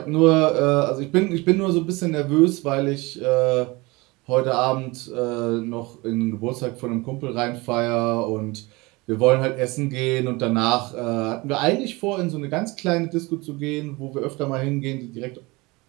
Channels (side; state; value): left; quieter; 24.0 dB